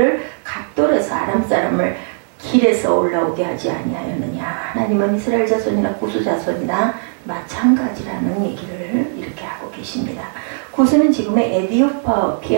각돌에서 아람 사람을 길에서 올라오게 하지 아니하였느냐. 하나님은 이스라엘 자손이나 고수 자손이나 마찬가지라는 얘기를 이렇게 하고 계십니다. 고수는 지금의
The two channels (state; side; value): silent; left; digital silence